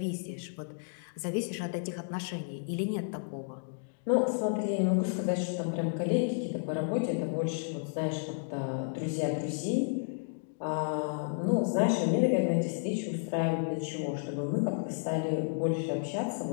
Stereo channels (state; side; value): silent; right; digital silence